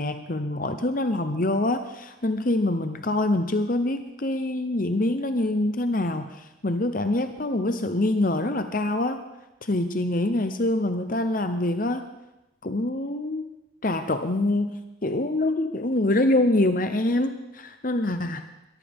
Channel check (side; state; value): both; normal; correlation 0.56